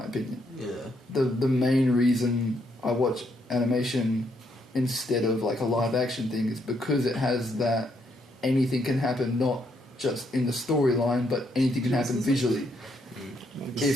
opinion. Yeah. The main reason I watch animation instead of like a live action thing is because it has that anything can happen, not just in the storyline, but anything can happen visually.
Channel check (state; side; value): normal; both; correlation 0.75